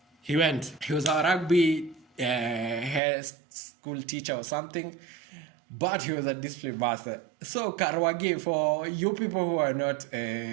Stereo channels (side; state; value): left; drops out; at 3.0 s